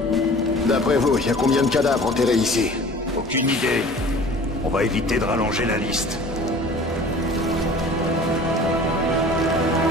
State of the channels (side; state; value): both; normal; correlation 0.44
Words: D'après vous, il y a combien de cadavres enterrés ici? Aucune idée. On va éviter de rallonger la liste.